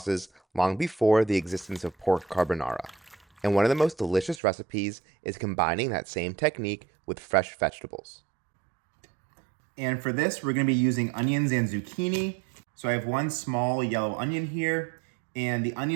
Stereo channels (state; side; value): drops out; left; at 4.4 s